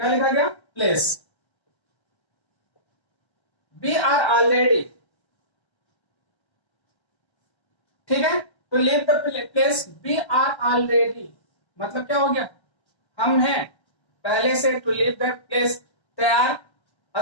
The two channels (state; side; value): late; right; 1.3 ms